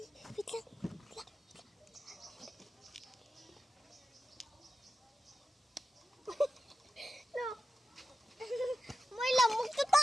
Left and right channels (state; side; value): normal; both; correlation 0.91